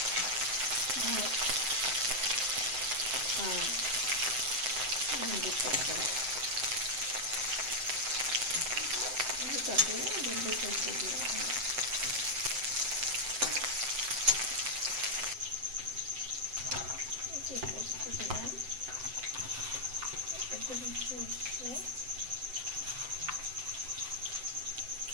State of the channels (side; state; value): left; late; 7.8 ms